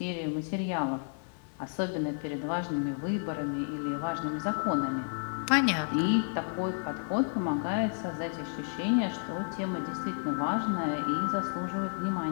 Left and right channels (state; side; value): silent; right; digital silence